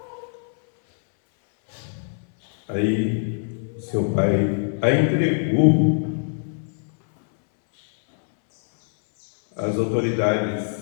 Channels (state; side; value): silent; right; 62 dB below the other